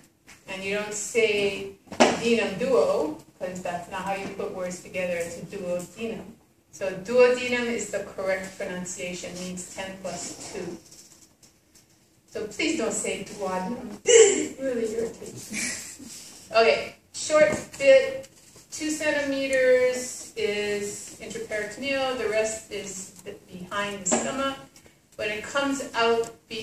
And you don't say denum duo, because that's not how you put words together. It's a duodenum. So duodenum is the correct pronunciation, means 10 plus 2. So please don't say duodenum. It's really irritating. Okay, short bit, 2 centimeters is intraperitoneal, the rest is behind the stomach. When it comes out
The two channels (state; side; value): identical; both; correlation 1.00